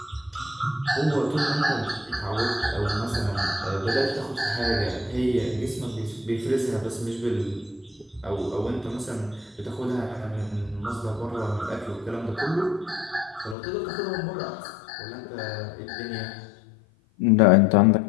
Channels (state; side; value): drops out; right; at 13.6 s